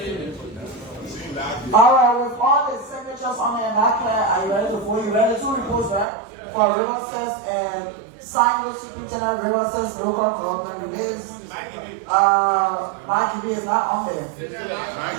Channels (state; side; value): drops out; left; at 6.1 s